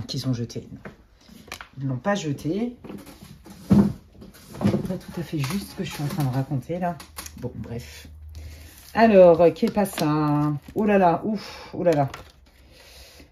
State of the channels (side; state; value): both; identical; correlation 1.00